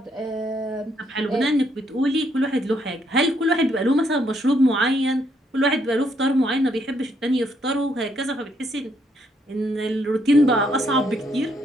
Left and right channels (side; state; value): both; normal; correlation 0.73